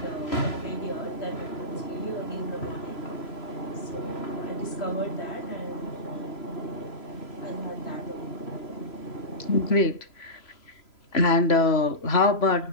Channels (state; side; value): late; right; 3.0 ms